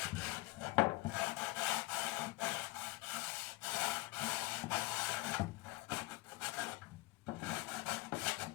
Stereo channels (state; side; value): quieter; right; 22.1 dB